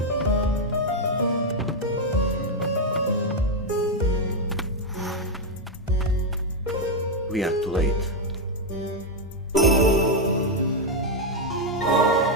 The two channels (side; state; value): both; normal; correlation 0.02